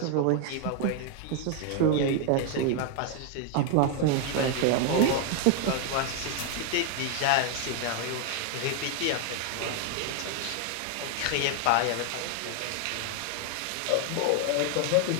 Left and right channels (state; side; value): different; both; correlation 0.00